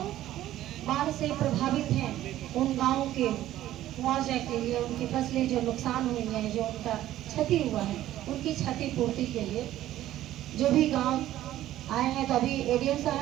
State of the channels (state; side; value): quieter; left; 13.6 dB